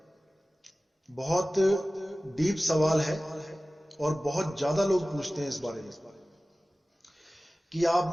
बहुत डीप सवाल है और बहुत ज्यादा लोग पूछते हैं इस बारे में कि आप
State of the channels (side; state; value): both; normal; correlation 0.97